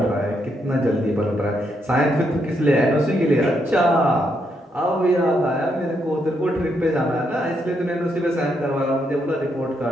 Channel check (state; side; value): normal; both; correlation 0.78